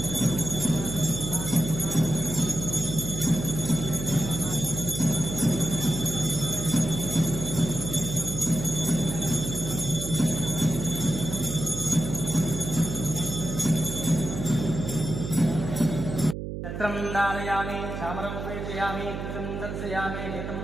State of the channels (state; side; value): noise; right; hum, 6 dB below the sound